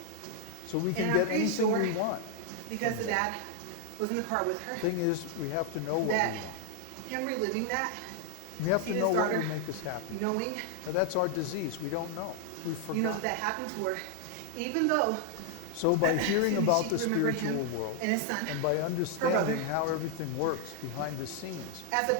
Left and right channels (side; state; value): both; different; correlation 0.01